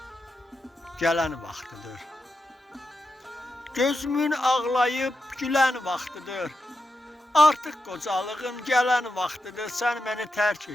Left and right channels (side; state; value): both; normal; correlation 0.87